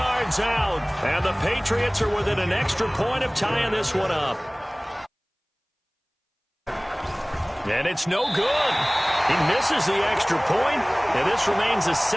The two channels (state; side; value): identical; both; correlation 1.00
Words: out. And the Patriots are within an extra point of tying this one up. And it's no good. He misses the extra point, and this remains a